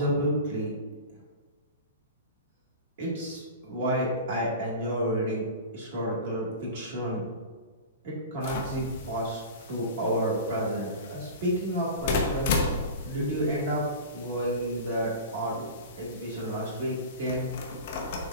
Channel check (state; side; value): inverted; both; correlation -0.32